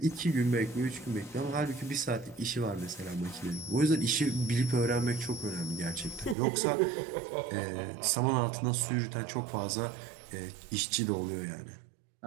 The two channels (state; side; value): drops out; left; at 6.4 s